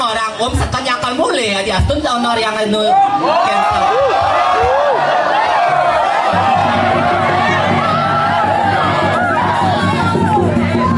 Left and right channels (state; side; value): identical; both; correlation 1.00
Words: sekan yang akan mulai ya di astun tahun yang itu